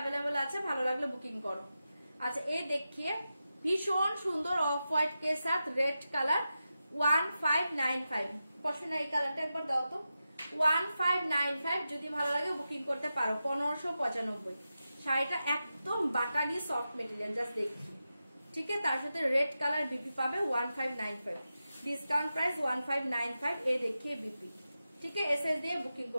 আছে, ভালো লাগলে বুকিং করো। আচ্ছা এই দেখিয়ে ভীষণ সুন্দর অফ হোয়াইট কে সাথ রেড কালার 1595। পছন্দ এই কালারটা একবার দাও তো। 1595 যদি ভালো লাগে বুকিং করতে পারো। 1595 শাড়িটা একদম বাটারি সফট মেটেরিয়াল, জাস্ট দেখি। ঠিক আছে, তার সাথে রেড কালার বিপি পাবে 1595, ডিসকাউন্ট প্রাইস 1595। এই দেখিয়ে বিপি, ঠিক আছে, এসএস দিয়ে বুকিং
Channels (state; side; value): inverted; both; correlation -0.91